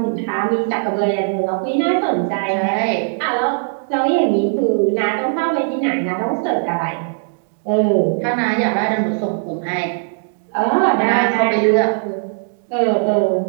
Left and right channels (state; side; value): silent; left; 67 dB below the other